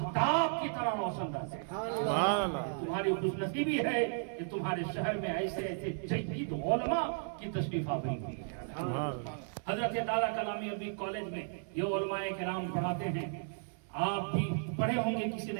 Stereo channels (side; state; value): left; silent; 55 dB below the other